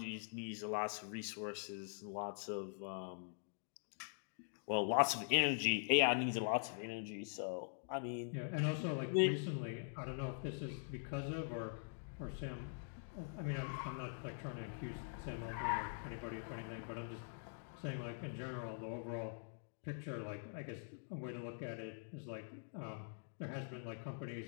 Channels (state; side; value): silent; right; digital silence